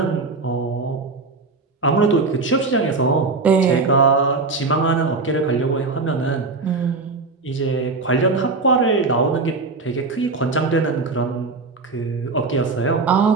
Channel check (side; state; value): left; quieter; 3.9 dB